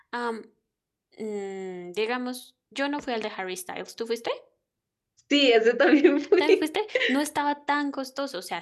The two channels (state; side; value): identical; both; correlation 1.00